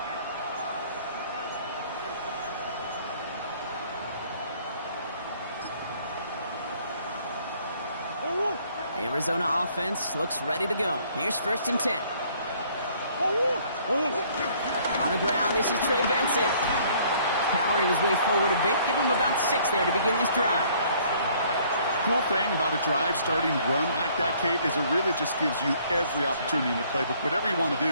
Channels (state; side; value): inverted; both; correlation -0.60